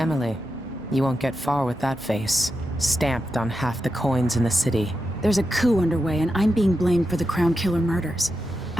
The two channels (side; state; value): both; normal; correlation 0.88